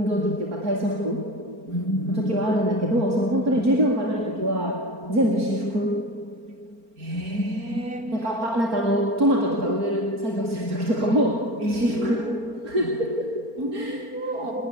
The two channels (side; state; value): left; late; 4.4 ms